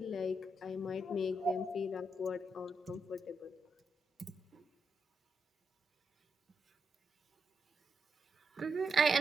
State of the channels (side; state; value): both; normal; correlation 0.82